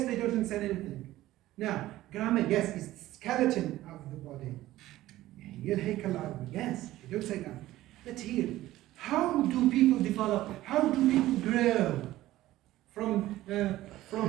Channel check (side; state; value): left; quieter; 15.6 dB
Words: they don't understand anything. Now, grammar, yes, is the skeleton of the body. Yes, you don't say grammar. But here, how do people develop? How do people grow from